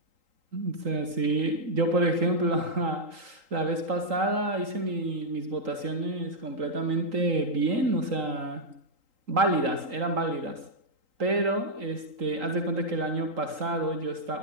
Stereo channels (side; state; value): left; late; 3.8 ms